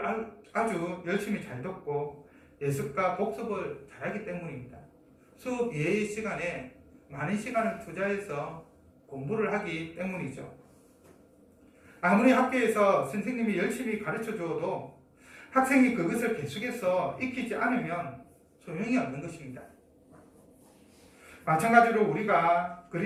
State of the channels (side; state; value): both; identical; correlation 1.00